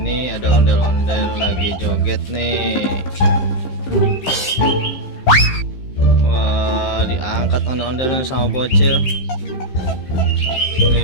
ada ondel-ondel lagi joget nih. Wah, diangkat ondel-ondelnya sama bocil.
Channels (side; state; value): right; late; 15 ms